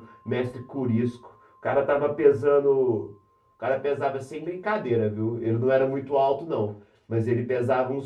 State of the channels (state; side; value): identical; both; correlation 1.00